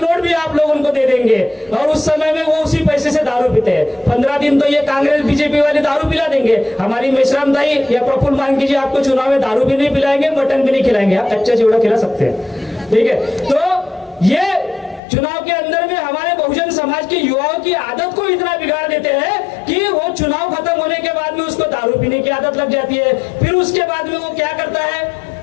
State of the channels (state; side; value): drops out; right; at 15.0 s